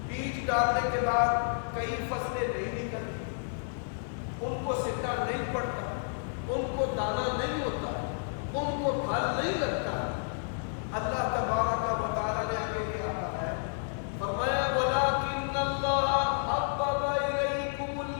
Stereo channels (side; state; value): right; silent; 57 dB below the other